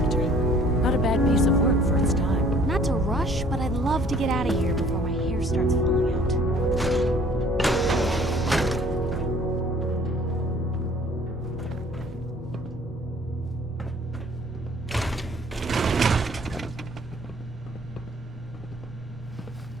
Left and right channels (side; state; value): both; normal; correlation 0.55